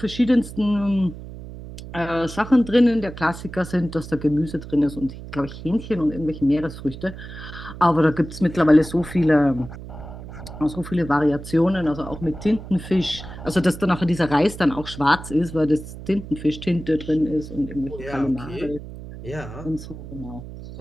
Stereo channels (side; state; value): right; noise; hum, 12 dB below the sound